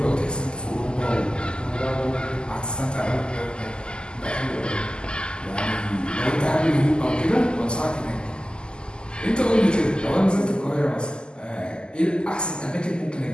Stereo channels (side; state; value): right; late; 0.048 ms